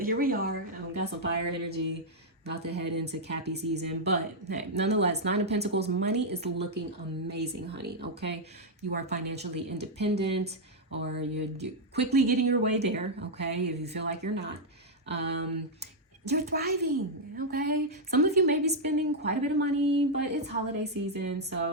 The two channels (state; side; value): normal; both; correlation -0.03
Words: we are. Got some fire energy. About to head into Cappy season. But hey, nonetheless, Nine of Pentacles, money is looking amazing, honey. Okay. You are financially independent, or you're quickly getting your way there. Okay. If you feel like you're not. You're thriving, okay? Some of you may be spending quite a bit of money, but it's holiday season,